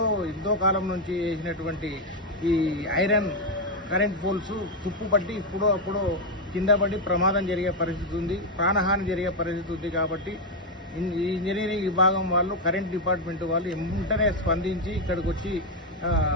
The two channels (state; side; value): normal; both; correlation 0.04